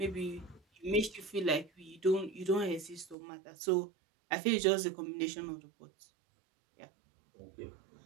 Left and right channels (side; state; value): left; drops out; at 3.2 s